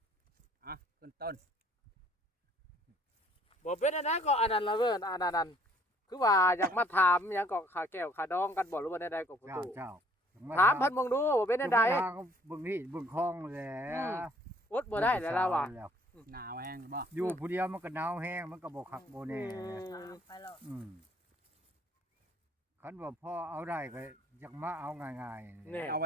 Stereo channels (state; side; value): normal; both; correlation 0.60